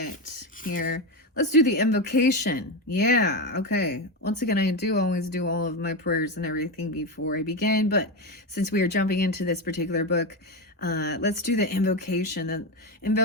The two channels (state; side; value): normal; both; correlation 0.14